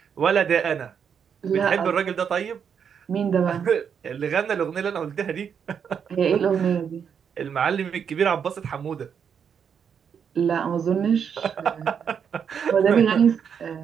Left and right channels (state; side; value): quieter; left; 7.3 dB